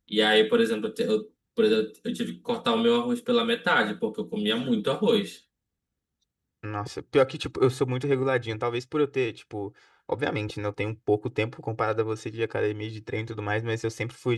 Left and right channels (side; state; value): both; identical; correlation 1.00